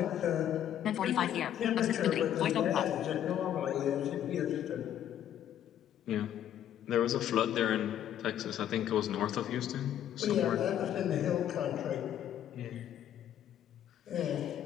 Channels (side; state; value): right; quieter; 10.7 dB